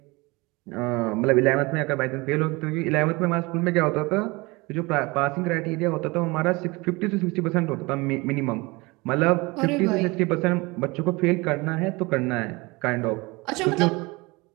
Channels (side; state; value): left; quieter; 24.4 dB